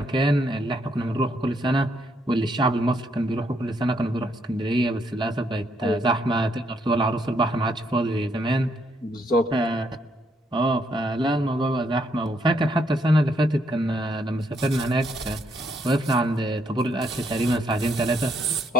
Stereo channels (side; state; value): both; normal; correlation 0.73